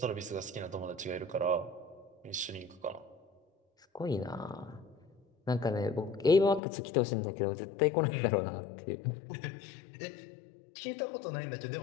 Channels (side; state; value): right; drops out; at 6.6 s